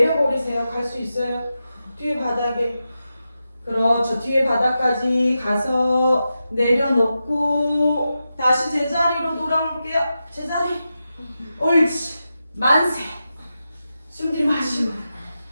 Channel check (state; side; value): inverted; both; correlation -0.90